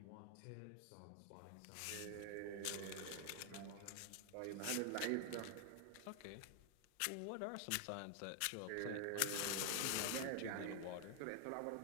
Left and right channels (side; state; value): both; different; correlation 0.00